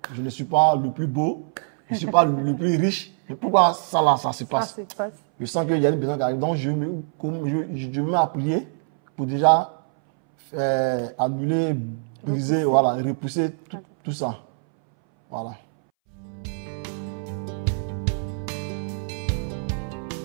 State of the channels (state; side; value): silent; left; 62 dB below the other